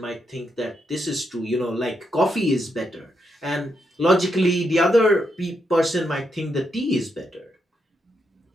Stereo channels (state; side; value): normal; both; correlation 0.81